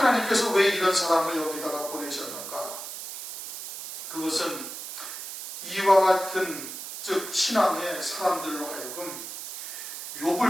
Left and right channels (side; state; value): right; noise; hiss, 9 dB below the sound